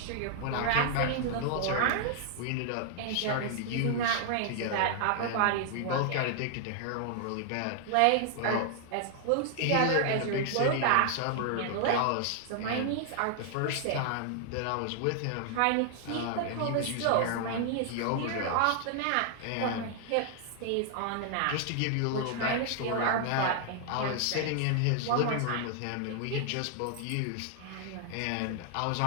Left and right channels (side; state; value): both; different; correlation 0.00